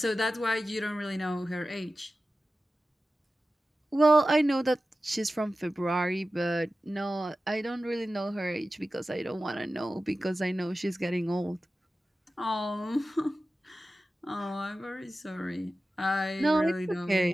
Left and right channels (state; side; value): normal; both; correlation 0.94